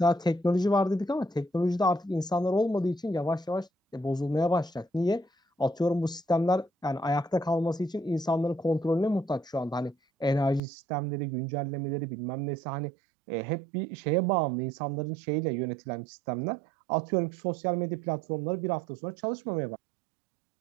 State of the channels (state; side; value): drops out; left; at 10.6 s